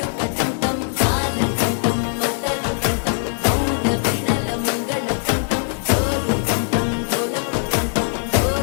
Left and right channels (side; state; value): right; silent; digital silence